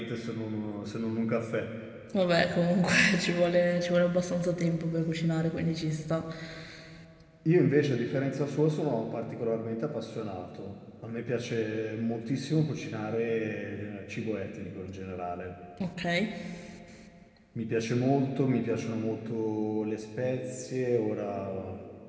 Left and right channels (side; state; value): both; identical; correlation 1.00